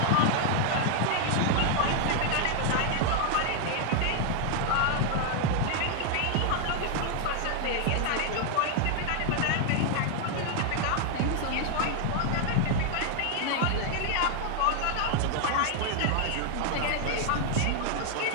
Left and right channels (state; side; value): different; both; correlation 0.00